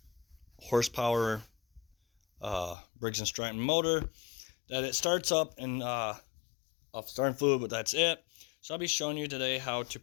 horsepower Briggs & Stratton motor that it starts up and off starting fluid, but that's it. So I'll be showing you today how to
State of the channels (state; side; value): drops out; right; at 2.8 s